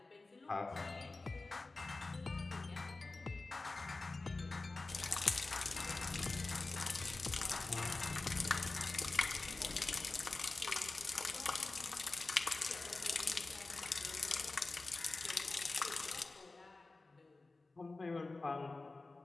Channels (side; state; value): right; quieter; 3.4 dB